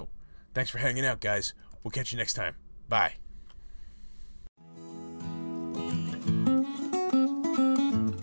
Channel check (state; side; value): inverted; both; correlation -1.00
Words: thanks for hanging out, guys. We'll catch you next time. Bye.